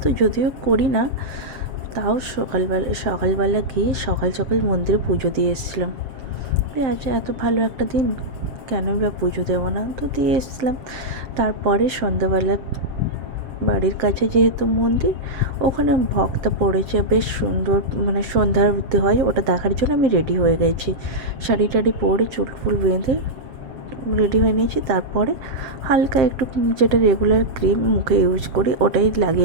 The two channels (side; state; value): left; late; 7.7 ms